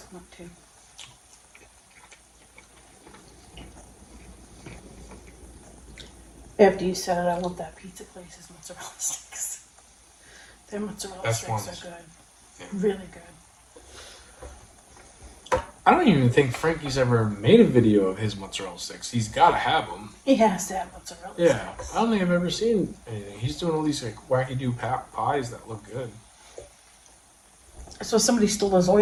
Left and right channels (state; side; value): identical; both; correlation 1.00